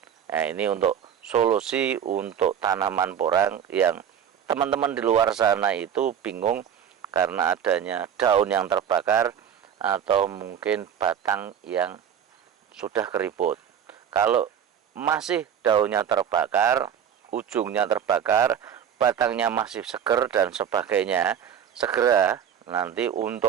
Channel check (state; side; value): quieter; left; 8.8 dB